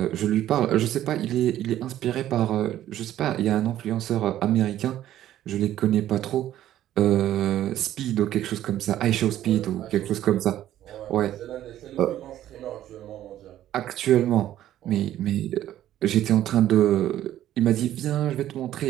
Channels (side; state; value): left; quieter; 12.6 dB